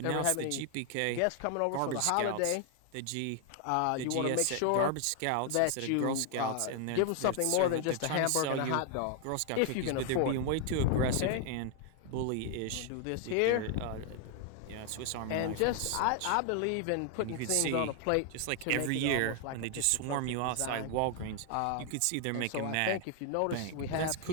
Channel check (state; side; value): different; both; correlation 0.00